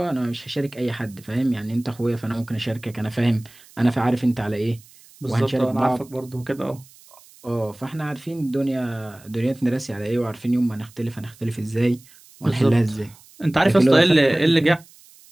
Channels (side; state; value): right; noise; hiss, 25 dB below the sound